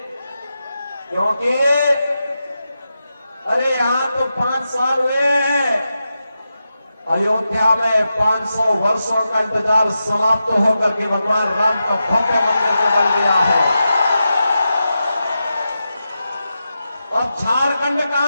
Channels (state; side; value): inverted; both; correlation -0.90